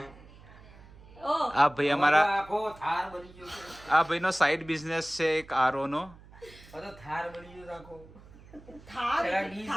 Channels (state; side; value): noise; right; hum, 21 dB below the sound